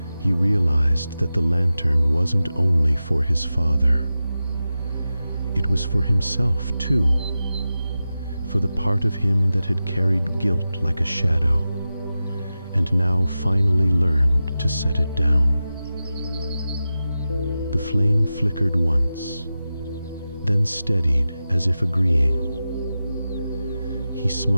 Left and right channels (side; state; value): both; inverted; correlation -0.93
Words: He realized that the lantern wasn't only for his father. It was for himself too, for the part of him that had carried guilt like a shadow, and now finally learned to set it down. The flame flickered once, then steadied as if agreeing. He